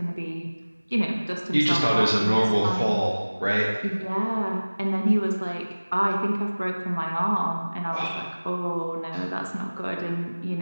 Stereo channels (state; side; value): inverted; both; correlation -1.00